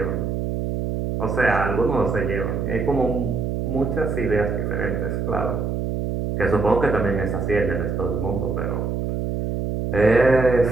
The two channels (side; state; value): right; noise; hum, 2 dB below the sound